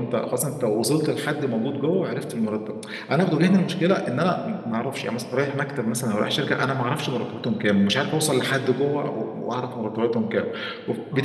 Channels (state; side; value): identical; both; correlation 1.00